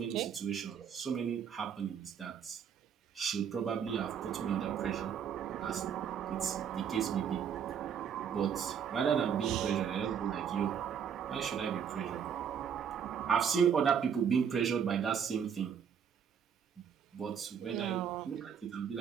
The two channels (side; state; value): left; quieter; 7.8 dB